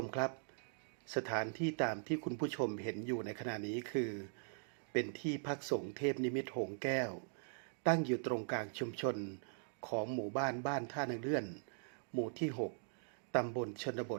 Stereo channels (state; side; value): silent; left; digital silence